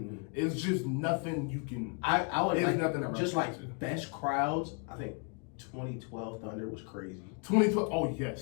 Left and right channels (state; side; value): quieter; right; 37.2 dB